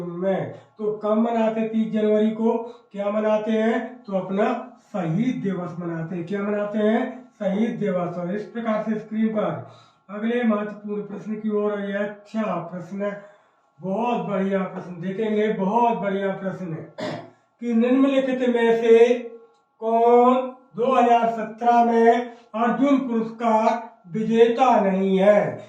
में। तो कब मनाते 30 जनवरी को? क्या मनाते हैं? तो अपना शहीद दिवस मनाते हैं। क्या मनाते हैं? शहीद दिवस। और इस प्रकार से स्क्रीन पर अगले महत्वपूर्ण प्रश्न की ओर। यह अच्छा प्रश्न बहुत बढ़िया प्रश्न देखेंगे, बहुत बढ़िया प्रश्न है कि निम्नलिखित में से कौन 2017 में अर्जुन पुरस्कार विजेता नहीं है।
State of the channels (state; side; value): identical; both; correlation 1.00